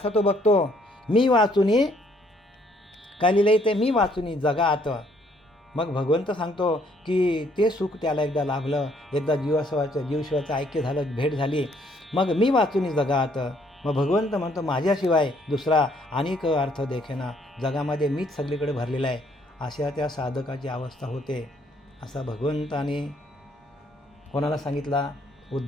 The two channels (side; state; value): both; normal; correlation 0.66